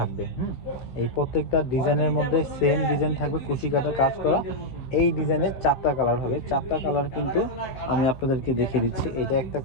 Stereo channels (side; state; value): right; late; 16 ms